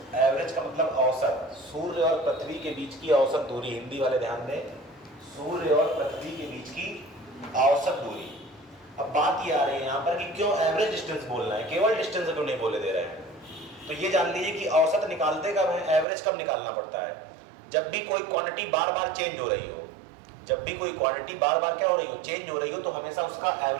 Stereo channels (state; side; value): drops out; left; at 16.1 s